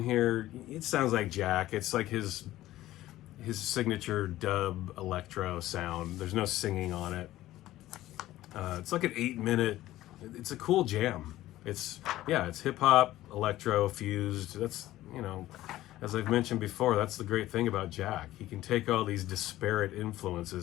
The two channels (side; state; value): right; quieter; 15.3 dB